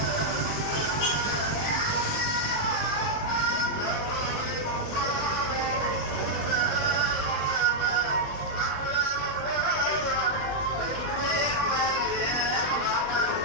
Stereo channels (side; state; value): right; late; 20 ms